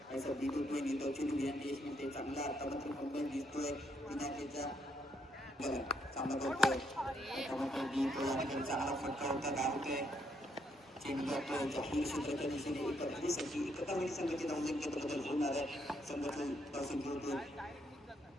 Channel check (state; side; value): normal; both; correlation 0.74